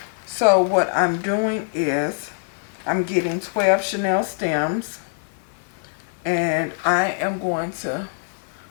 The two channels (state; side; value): silent; right; digital silence